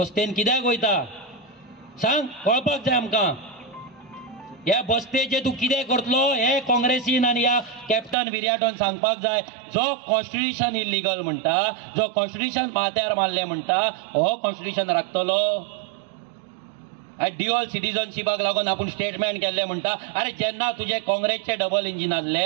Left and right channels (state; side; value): drops out; left; at 8.2 s